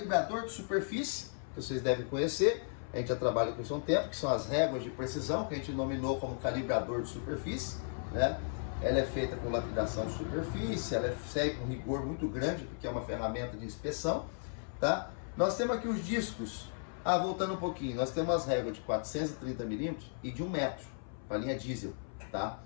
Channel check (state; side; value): silent; right; 54 dB below the other